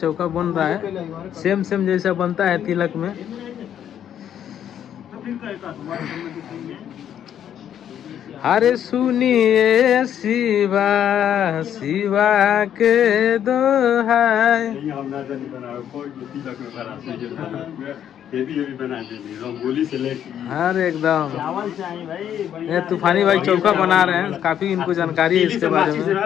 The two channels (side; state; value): right; quieter; 9.8 dB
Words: बन रहा है। सेम जैसा बनता है तिलक में। अरे सुनिए शिवा शिवा के दोहाई। हर एकदम ये तूफानी भाई चौका बना रहे हैं। काफी इनको जानकारी है इसके बारे में।